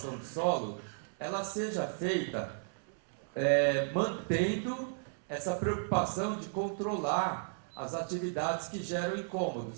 do solo, ela seja feita mantendo essa preocupação de controlar as atividades que geram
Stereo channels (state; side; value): silent; left; 55 dB below the other